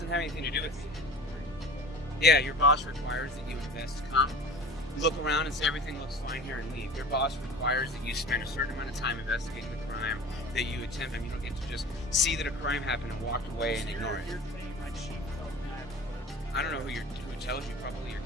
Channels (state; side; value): normal; both; correlation 0.40